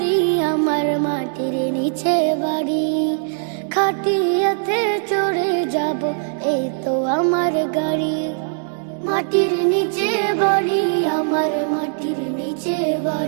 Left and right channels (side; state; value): left; silent; digital silence